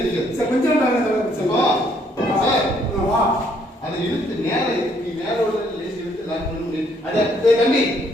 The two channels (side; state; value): both; normal; correlation 0.67